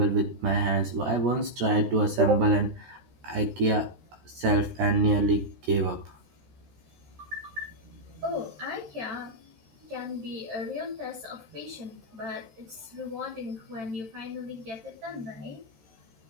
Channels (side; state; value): left; late; 13 ms